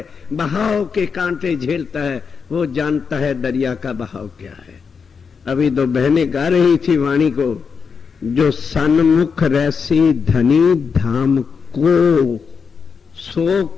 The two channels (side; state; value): right; quieter; 5.8 dB